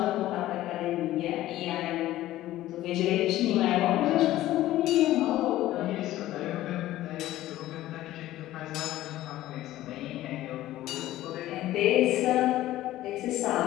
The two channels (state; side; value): quieter; right; 15.0 dB